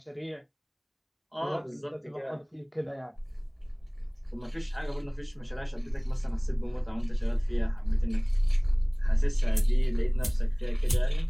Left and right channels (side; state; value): both; identical; correlation 1.00